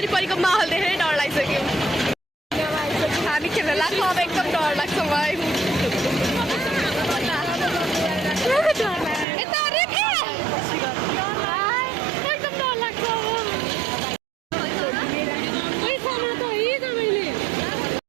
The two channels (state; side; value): drops out; left; at 9.2 s